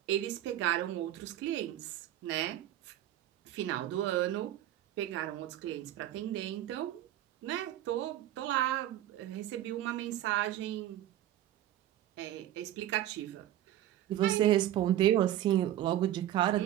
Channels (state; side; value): quieter; left; 12.9 dB